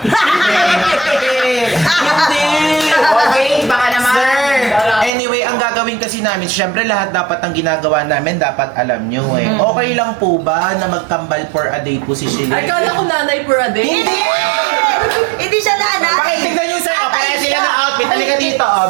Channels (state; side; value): drops out; left; at 5.1 s